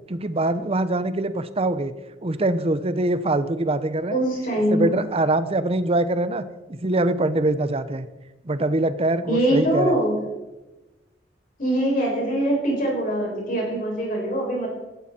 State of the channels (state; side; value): normal; both; correlation 0.49